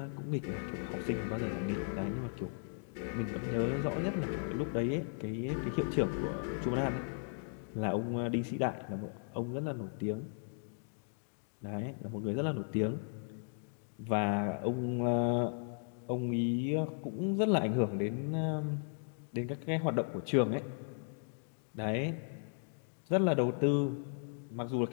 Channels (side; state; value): right; silent; digital silence